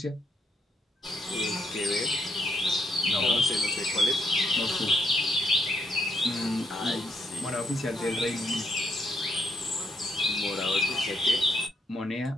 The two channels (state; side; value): normal; both; correlation 0.75